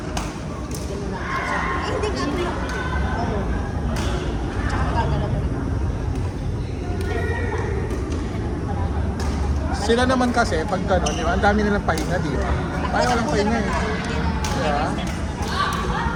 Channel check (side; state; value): both; identical; correlation 1.00